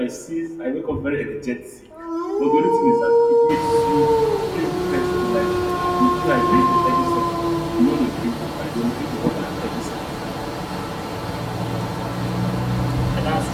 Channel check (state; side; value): identical; both; correlation 1.00